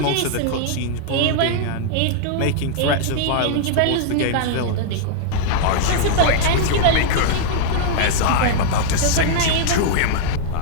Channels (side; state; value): both; different; correlation -0.01